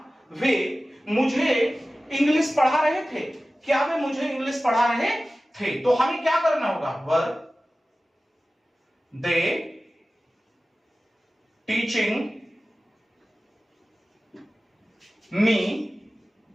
वे मुझे इंग्लिश पढ़ा रहे थे, क्या वे मुझे इंग्लिश पढ़ा रहे थे। तो हमें क्या करना होगा, were they teaching me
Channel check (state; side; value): normal; both; correlation 0.96